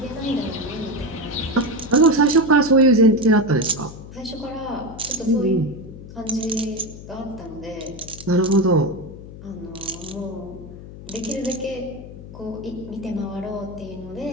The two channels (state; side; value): noise; left; hum, 14 dB below the sound